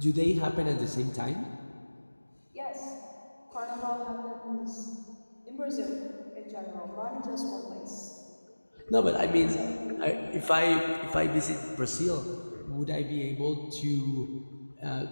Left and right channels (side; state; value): both; inverted; correlation -1.00